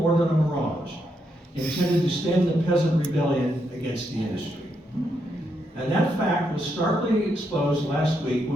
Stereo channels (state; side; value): normal; both; correlation 0.80